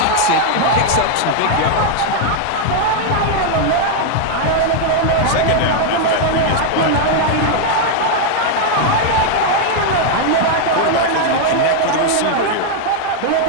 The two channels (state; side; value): different; both; correlation 0.00